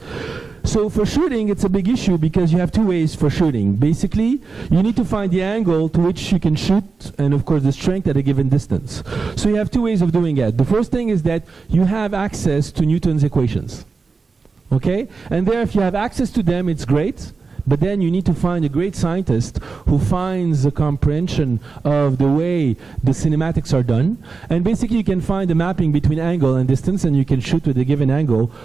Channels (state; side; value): quieter; left; 4.5 dB